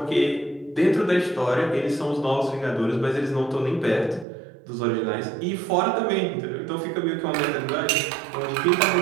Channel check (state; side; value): drops out; left; at 4.2 s